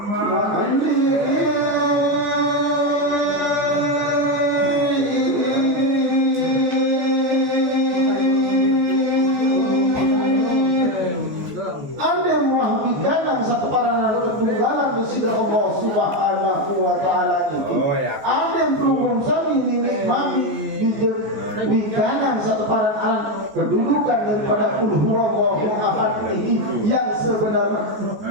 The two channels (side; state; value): left; late; 14 ms